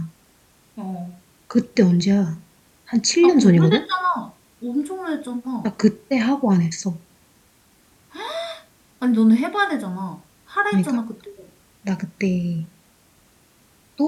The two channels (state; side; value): identical; both; correlation 1.00